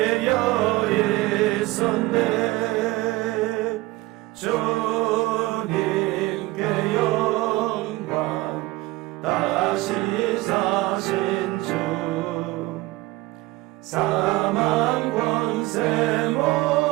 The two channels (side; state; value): left; quieter; 19.7 dB